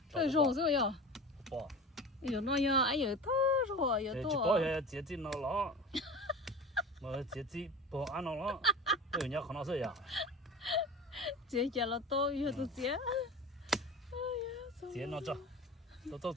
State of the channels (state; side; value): normal; both; correlation 0.33